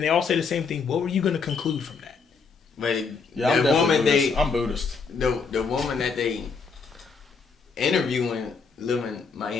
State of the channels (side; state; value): right; quieter; 5.1 dB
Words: they all say the same thing, what were you gonna conclude from that? But yeah, I'm definitely Buddhist. I'm Buddhist. The woman that they interviewing live in